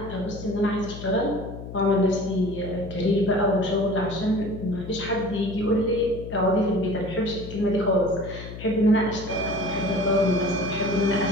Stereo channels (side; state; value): left; noise; hum, 11 dB below the sound